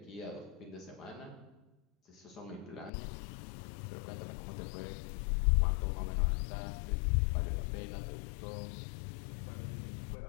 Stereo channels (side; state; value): right; drops out; at 2.9 s